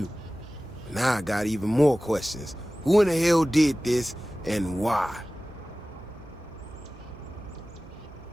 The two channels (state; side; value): noise; right; hum, 22 dB below the sound